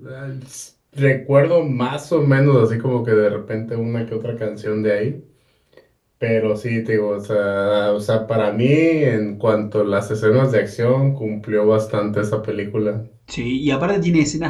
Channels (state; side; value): identical; both; correlation 1.00